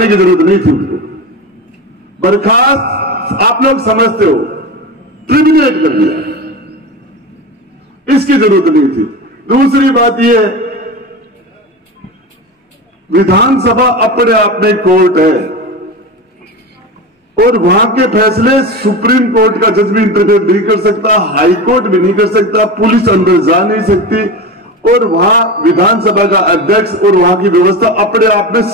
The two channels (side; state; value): both; normal; correlation 0.25